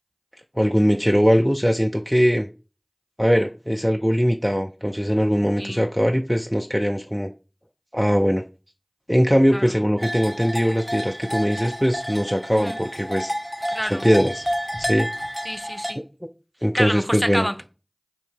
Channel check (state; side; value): identical; both; correlation 1.00